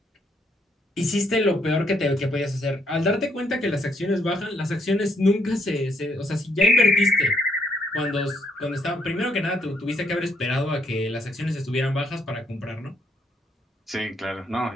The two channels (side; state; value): both; normal; correlation 0.71